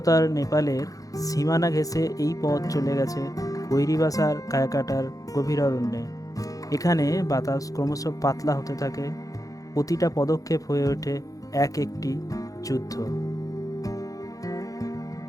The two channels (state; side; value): late; right; 0.17 ms